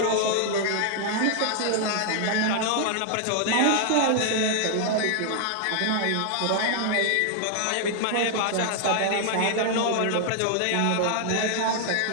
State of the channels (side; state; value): both; different; correlation 0.00